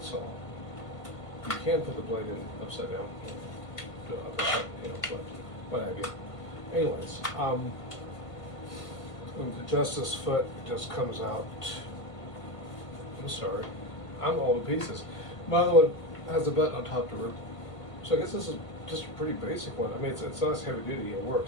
saw. You can put the blade in upside down, but what have you. Anyways, to adjust this foot, it just comes out. I'm sorry, I'm all to pieces. My other one has a button on top to rip. So I guess this is just a pretty basic one. I mean, it's not as heavy duty, it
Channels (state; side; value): late; right; 1.5 ms